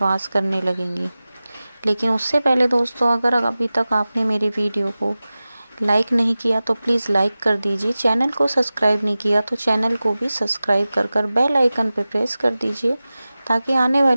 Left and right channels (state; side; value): inverted; both; correlation -0.96